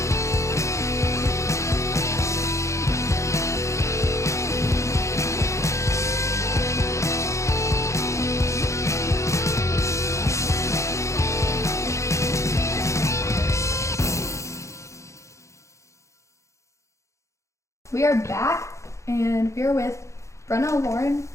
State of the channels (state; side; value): late; right; 0.14 ms